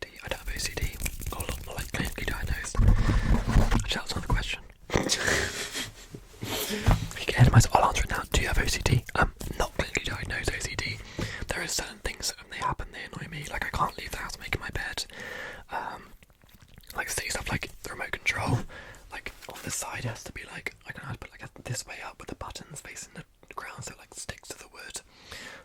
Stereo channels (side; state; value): both; identical; correlation 1.00